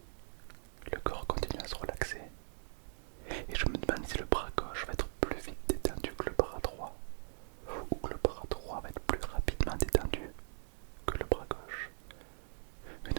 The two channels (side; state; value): left; silent; digital silence